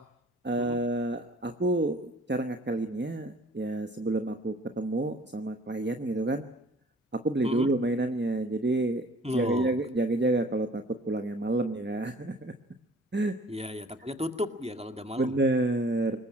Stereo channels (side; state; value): both; normal; correlation 0.52